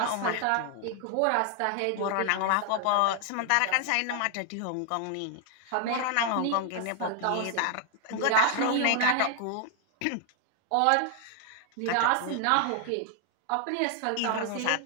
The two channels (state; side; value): different; both; correlation 0.00